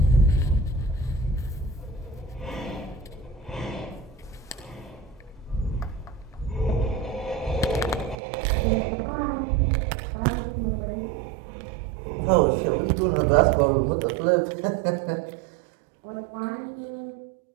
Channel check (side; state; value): left; drops out; at 8.2 s